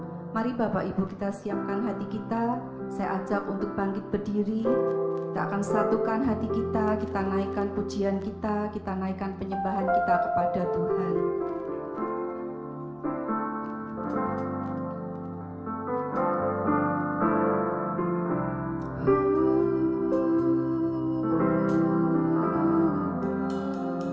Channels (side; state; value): both; identical; correlation 1.00